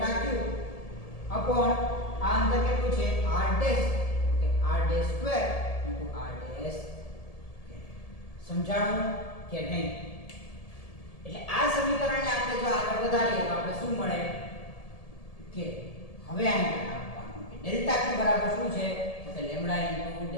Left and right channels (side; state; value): right; late; 1.7 ms